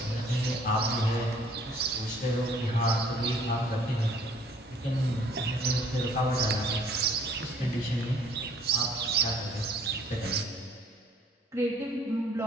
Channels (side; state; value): both; normal; correlation 0.57